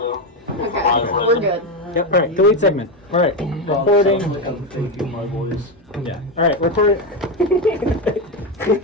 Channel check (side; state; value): both; normal; correlation 0.11